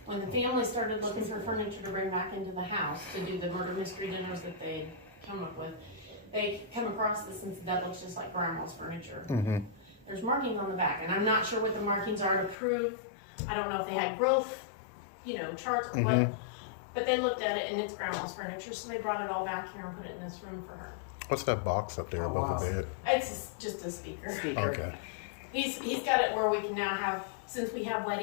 When the family started looking for furniture to bring back into the house to do the murder mystery dinners that they'd come up with, they come across this and said, that looks just like Grandma's furniture. Mm-hmm. There's markings on the back, and I'm not sure what the markings are to prove. I don't know if they had growth, charts or what, but they looked at it, and it's Grandma's furniture, so they brought it all back here and put it in this room for her. What's that box up there above the bed? It's just a speaker. Okay. He's got it where we can now have, since we have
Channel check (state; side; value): drops out; right; at 12.6 s